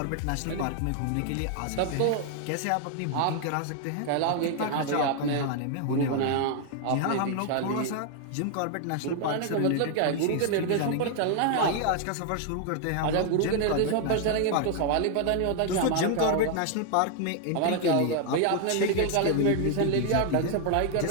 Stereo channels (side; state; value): both; different; correlation 0.00